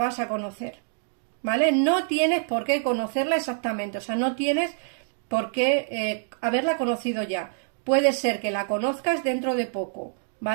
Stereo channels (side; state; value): left; silent; digital silence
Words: a conocer, ¿vale? No tienes por qué conocerla exactamente, o sea, no tienes por qué haberla conocido ya. Puede ser que la conozcas dentro de poco,